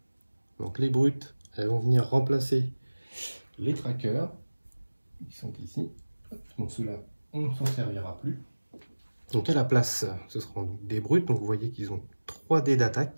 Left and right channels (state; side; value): inverted; both; correlation -1.00